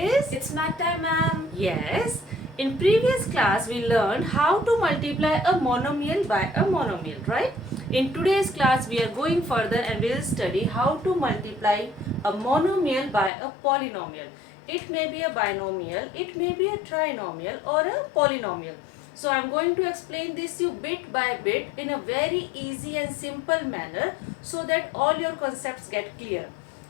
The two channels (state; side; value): drops out; right; at 13.3 s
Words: It's math time, ma'am. Yes. In previous class we learned how to multiply a monomial by a monomial, right? In today's class we are going further and we will study how to multiply a monomial by a polynomial. It may be a binomial, it may be a trinomial or a polynomial. So I am going to explain this you bit by bit in a very easy and simple manner so that all your concepts get clear.